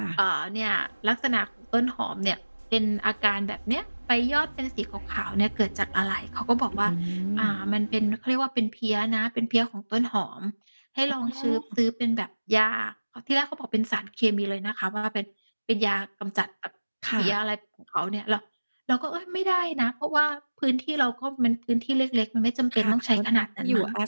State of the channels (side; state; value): both; inverted; correlation -1.00